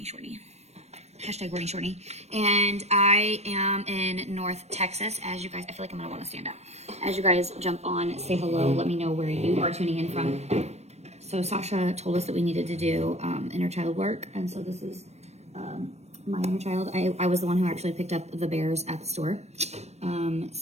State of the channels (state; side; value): late; left; 0.31 ms